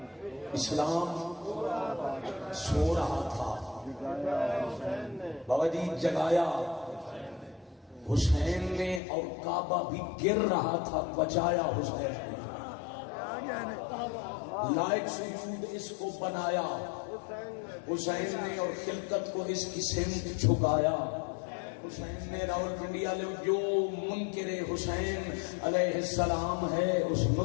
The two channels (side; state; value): right; drops out; at 9.0 s